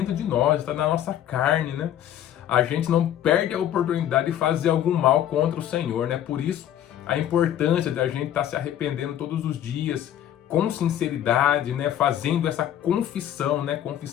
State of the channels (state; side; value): quieter; right; 11.1 dB